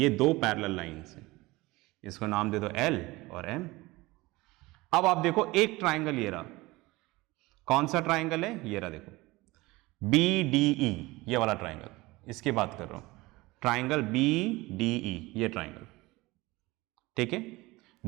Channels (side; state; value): left; quieter; 21.1 dB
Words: दो पैरेलल लाइंस हैं, इसको नाम दे दो एल और एम। अब आप देखो एक ट्राइंगल ये रहा, कौन सा ट्राइंगल है, ये रहा, देखो बी डी ई, ये वाला ट्राइंगल, इसकी बात कर रहा हूं, ट्राइंगल बी डी ई, ये ट्राइंगल। ठीक है,